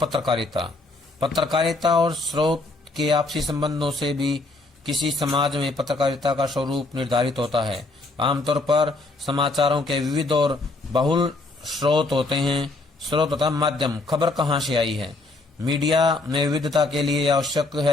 पत्रकारिता और स्रोत के आपसी संबंधों से भी किसी समाज में पत्रकारिता का स्वरूप निर्धारित होता है। आमतौर पर समाचारों के विविध और बहुल स्रोत होते हैं। स्रोत तथा माध्यम, खबर कहाँ से आई है। मीडिया में विविधता के लिए आवश्यक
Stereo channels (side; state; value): right; quieter; 3.1 dB